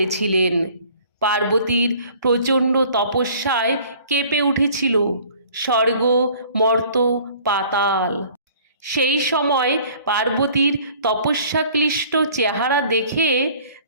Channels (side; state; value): both; inverted; correlation -0.52